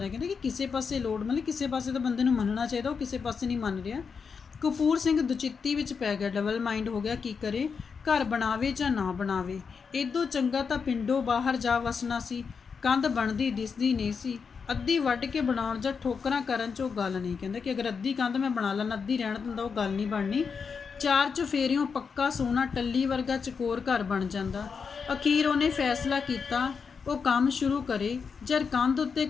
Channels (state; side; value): quieter; right; 5.8 dB